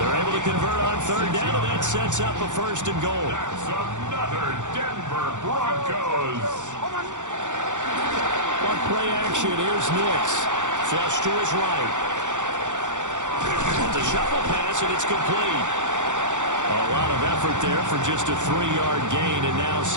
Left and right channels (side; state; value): left; late; 0.85 ms